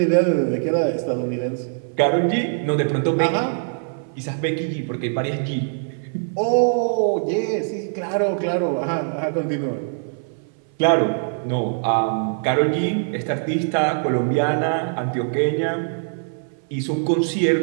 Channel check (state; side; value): silent; left; 59 dB below the other